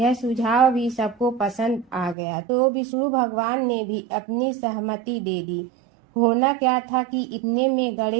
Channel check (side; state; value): left; drops out; at 2.1 s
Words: सुझाव भी सबको पसंद आ गया, तो विष्णु भगवान ने भी अपनी सहमति दे दी। होना क्या था कि इतने में